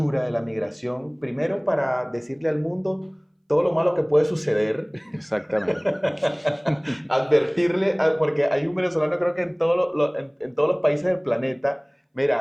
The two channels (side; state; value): both; identical; correlation 1.00